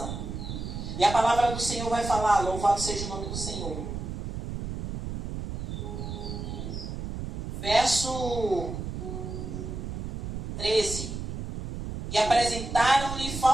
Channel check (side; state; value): right; noise; rumble, 6 dB below the sound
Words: E a palavra do Senhor vai falar: louvado seja o nome do Senhor. Verso 13. E apresentaram-lhe